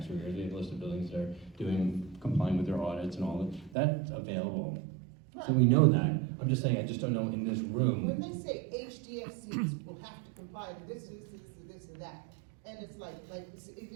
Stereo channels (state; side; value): drops out; left; at 3.8 s